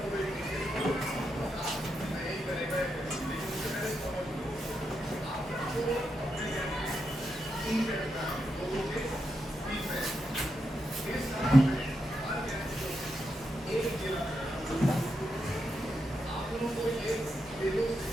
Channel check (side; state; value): both; normal; correlation 0.84